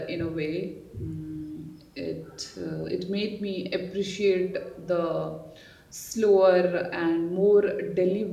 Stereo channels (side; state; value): both; identical; correlation 1.00